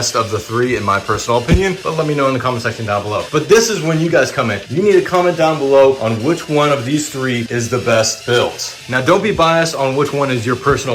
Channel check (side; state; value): both; identical; correlation 1.00